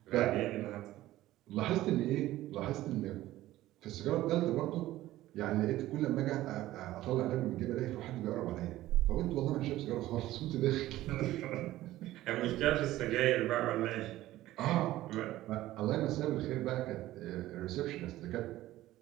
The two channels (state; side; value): quieter; left; 15.5 dB